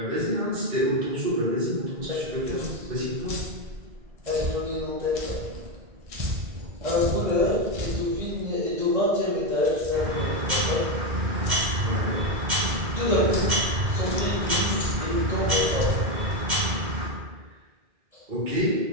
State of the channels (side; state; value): left; late; 2.1 ms